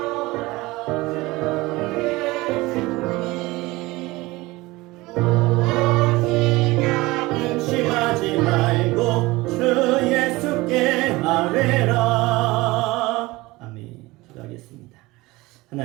근심하지 말고 주 예수께 아뢰라. 아멘. 기도하겠습니다.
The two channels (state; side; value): quieter; left; 21.0 dB